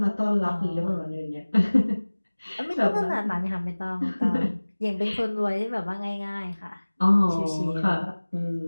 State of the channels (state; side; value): inverted; both; correlation -1.00